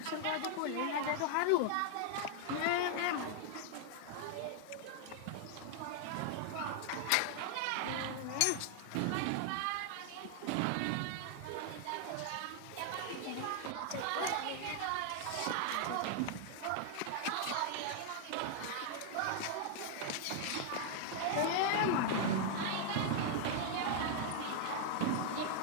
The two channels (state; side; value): different; both; correlation 0.00